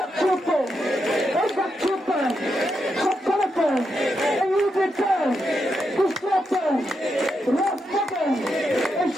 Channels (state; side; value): normal; both; correlation 0.84